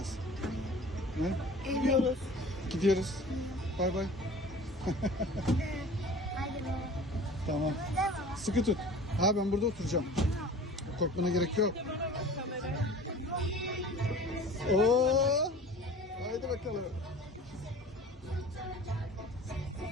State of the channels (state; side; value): normal; both; correlation 0.42